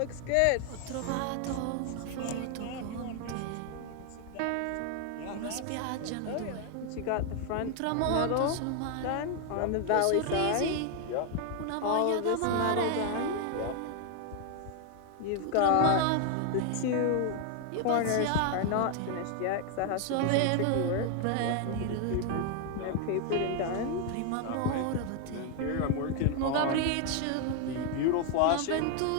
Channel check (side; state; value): both; different; correlation 0.00